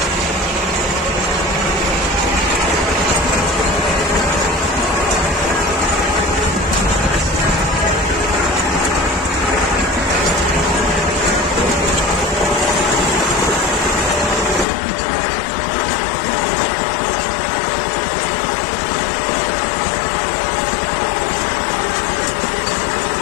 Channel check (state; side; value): drops out; right; at 14.7 s